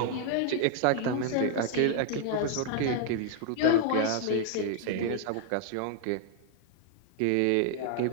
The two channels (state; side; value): different; both; correlation 0.00